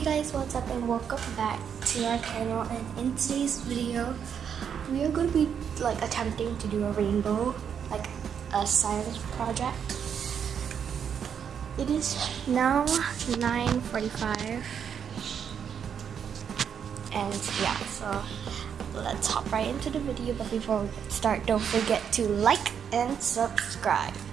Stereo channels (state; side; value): quieter; left; 7.8 dB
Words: guys, what's up and welcome back to our channel, and in today's video we are going to be attempting to do a rainbow, like a science project. It is now 9:45 and yeah, so let's hop right into the video. But before we start, don't forget to like and subscribe.